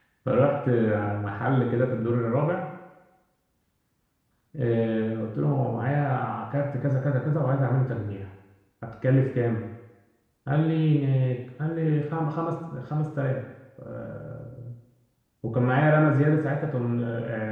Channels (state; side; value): identical; both; correlation 1.00